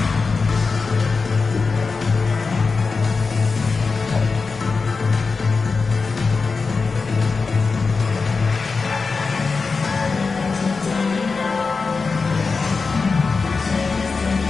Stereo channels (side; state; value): right; quieter; 4.5 dB